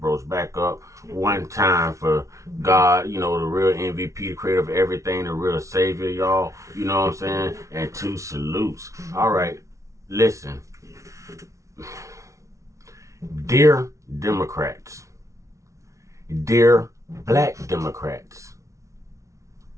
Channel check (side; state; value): left; late; 0.15 ms